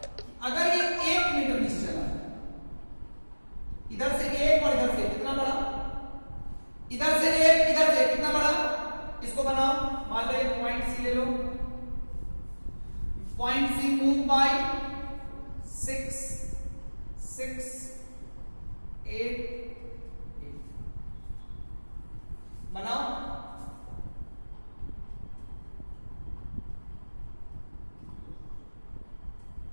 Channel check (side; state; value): both; inverted; correlation -1.00